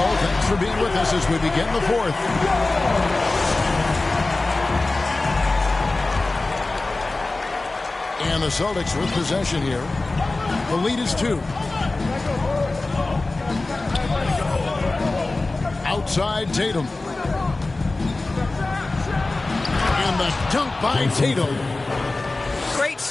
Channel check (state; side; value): quieter; right; 3.2 dB